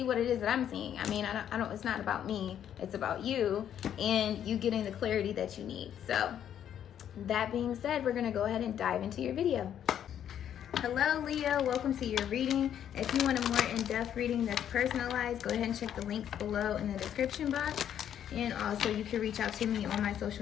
what it is that I'm seeing. I mean, I don't, it's not about me. It's about you and you getting the clarity that you need. So that being said, we're going to go ahead and dive into your video. Hello, Leo. Welcome to your reading. If you want a more in-depth reading that's personalized, go ahead and check the links below in the description box. And also, you can reach out to me on my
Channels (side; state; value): right; quieter; 9.8 dB